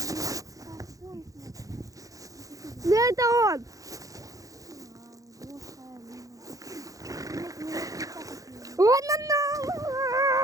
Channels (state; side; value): late; left; 0.17 ms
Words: Да это он. Вон она.